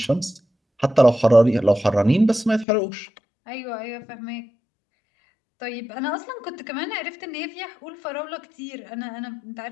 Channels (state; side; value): drops out; right; at 2.7 s